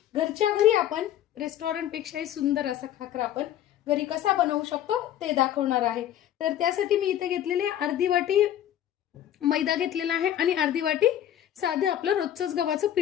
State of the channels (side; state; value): right; quieter; 11.4 dB